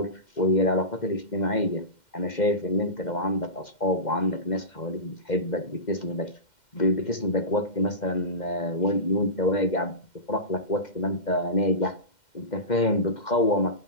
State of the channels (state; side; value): late; right; 2.1 ms